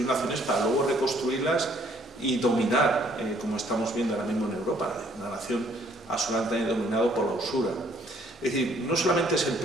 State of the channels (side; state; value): both; normal; correlation 0.63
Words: naciones para luego reconstruirlas y dominar, como estamos viendo ahora mismo en Europa, una nación absolutamente dominada por la usura. Es decir, no solamente es el